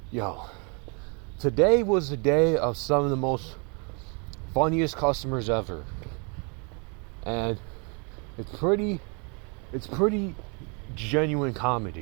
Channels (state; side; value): quieter; left; 34.4 dB